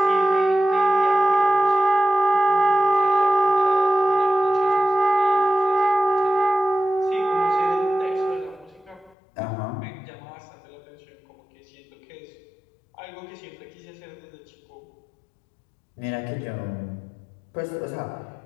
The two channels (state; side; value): drops out; right; at 9.2 s